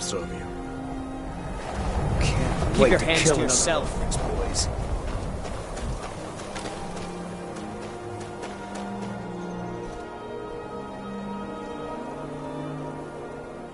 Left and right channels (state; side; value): identical; both; correlation 1.00